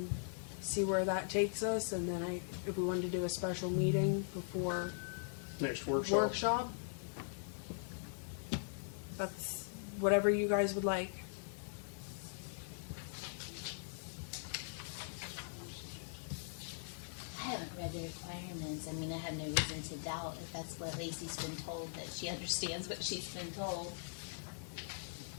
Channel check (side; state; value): right; silent; digital silence